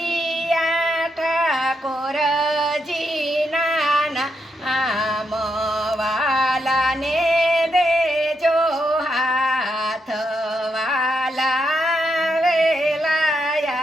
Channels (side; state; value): both; normal; correlation 0.81